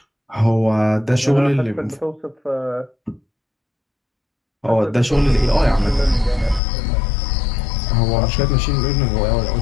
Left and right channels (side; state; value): right; drops out; at 6.6 s